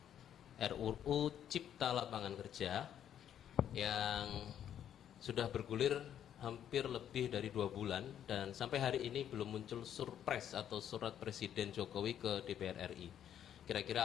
RUU Cipta Lapangan Kerja yang sudah bergulir hampir lebih dari 2 bulan dan sampai hari ini belum muncul surpres atau surat Presiden Jokowi ke DPR RI. Kira-kira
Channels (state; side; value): quieter; right; 9.9 dB